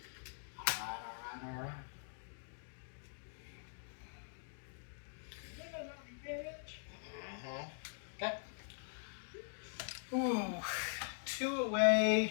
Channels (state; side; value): silent; right; digital silence